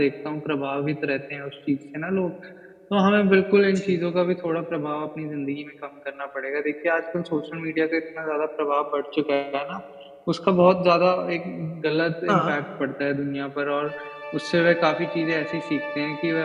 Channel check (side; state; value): both; identical; correlation 1.00